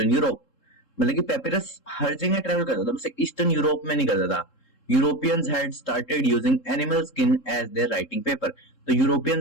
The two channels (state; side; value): late; right; 3.7 ms